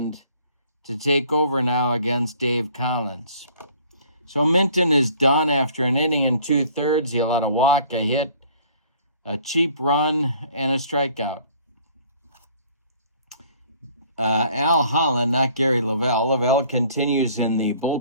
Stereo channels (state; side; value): inverted; both; correlation -0.56